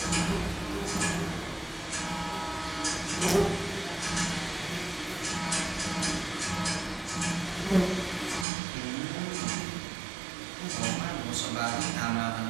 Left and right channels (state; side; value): drops out; left; at 8.5 s